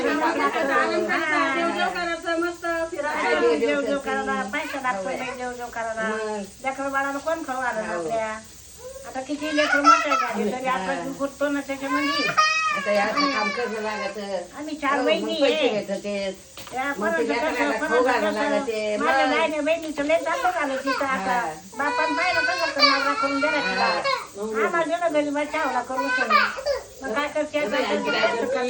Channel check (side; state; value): both; identical; correlation 1.00